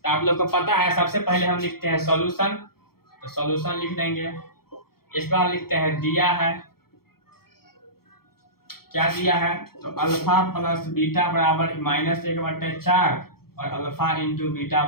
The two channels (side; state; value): right; late; 0.94 ms